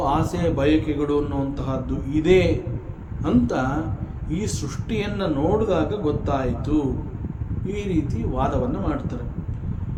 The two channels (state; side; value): identical; both; correlation 1.00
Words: ಆಸೆ, ಬಯಕೆಗಳು ಅನ್ನುವಂತಹದ್ದು ಇದೆ ಅಂತ ಈ ಸೃಷ್ಟಿಯನ್ನು ನೋಡಿದಾಗ ಗೊತ್ತಾಯಿತು. ಈ ರೀತಿ ವಾದವನ್ನು ಮಾಡ್ತಾರೆ.